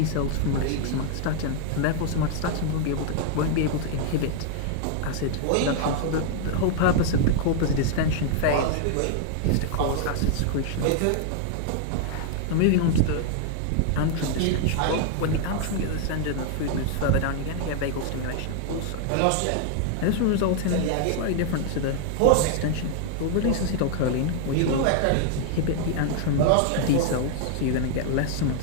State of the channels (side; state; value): both; different; correlation 0.00